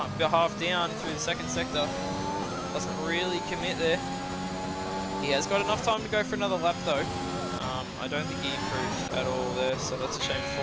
half down through the second sector. Doesn't really commit there. He has got enough time to go for another lap though. I don't think he improved at all there, so that's a shame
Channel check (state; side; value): identical; both; correlation 1.00